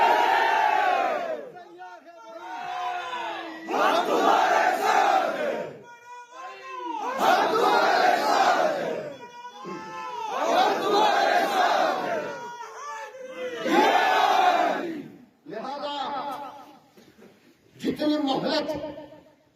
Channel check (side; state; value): both; identical; correlation 1.00